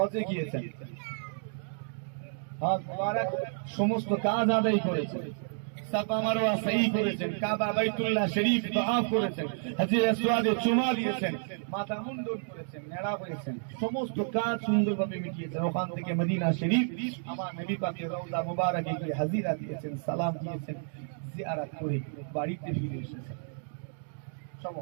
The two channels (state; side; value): silent; left; digital silence